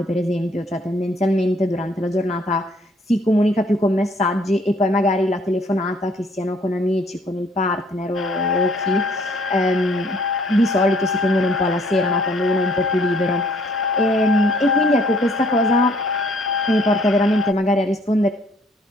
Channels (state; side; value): normal; both; correlation 0.61